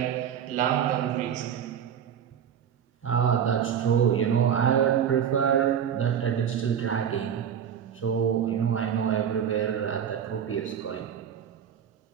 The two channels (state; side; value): quieter; left; 8.6 dB